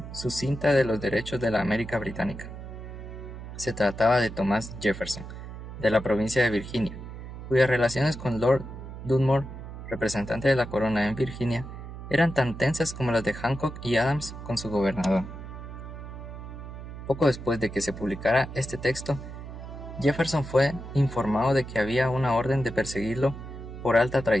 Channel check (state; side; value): noise; right; hum, 11 dB below the sound